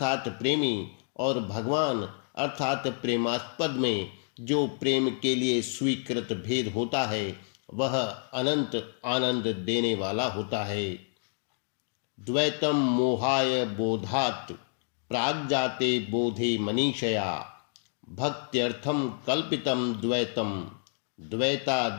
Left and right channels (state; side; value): silent; right; 56 dB below the other